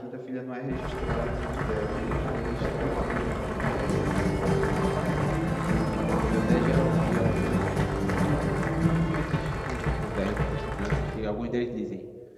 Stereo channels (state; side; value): identical; both; correlation 1.00